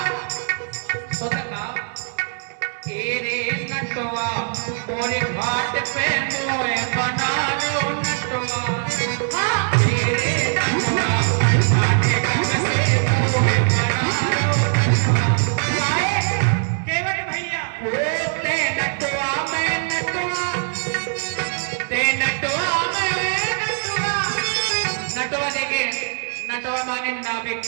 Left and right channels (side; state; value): left; silent; 63 dB below the other